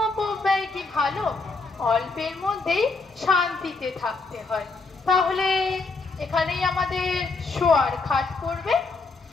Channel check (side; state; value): right; quieter; 3.9 dB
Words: অপব্যয় কি ভালো? অল্পের মধ্যেই শান্তিতে থাকতে হয়। তাহলে এখানেই আমাদের শোয়ার খাট পড়বে।